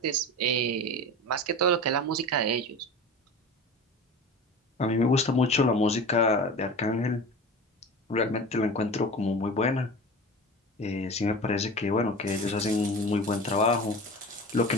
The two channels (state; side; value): normal; both; correlation 0.33